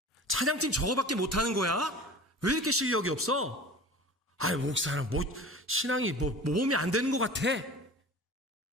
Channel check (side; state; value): both; normal; correlation 0.39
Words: 찬양팀 저거밖에 못하는 거야? 왜 이렇게 실력이 없어? 목사는 신앙이 몸이 안 되는 것 같아.